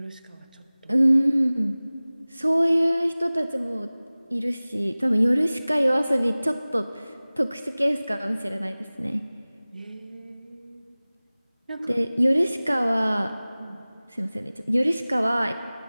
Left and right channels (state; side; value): inverted; both; correlation -0.99